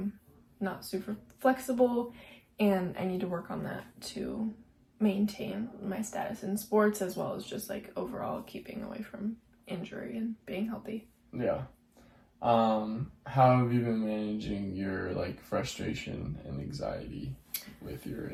not super flexible, and I need to work on that to maintain my status in sports, as well as just like overall keeping away from injury and being healthy. Yeah. How have you been managing your like frustration and anxiety with your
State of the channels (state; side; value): identical; both; correlation 1.00